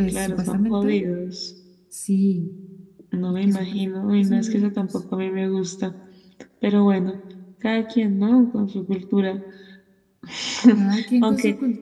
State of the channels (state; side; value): identical; both; correlation 1.00